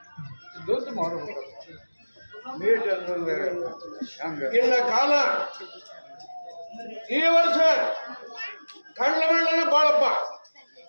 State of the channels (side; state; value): both; inverted; correlation -1.00